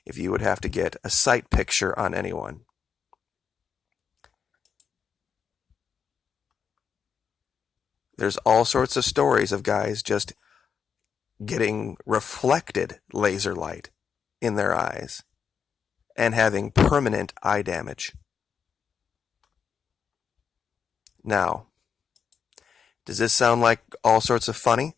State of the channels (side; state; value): right; quieter; 6.9 dB